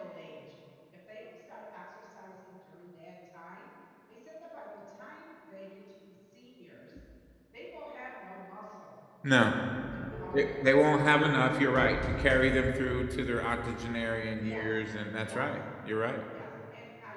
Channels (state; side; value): identical; both; correlation 1.00